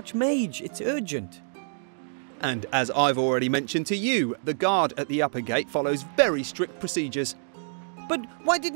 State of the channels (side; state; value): left; silent; digital silence